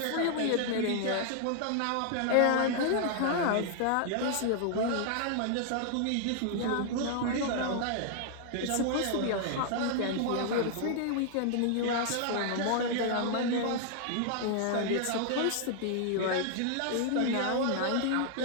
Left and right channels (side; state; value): both; different; correlation -0.01